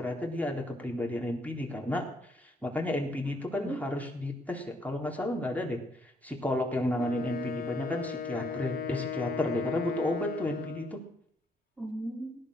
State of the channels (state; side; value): normal; both; correlation 0.70